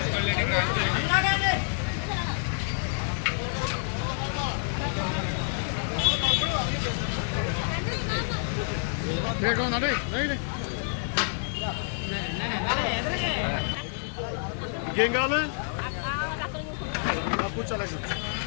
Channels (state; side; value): silent; right; 59 dB below the other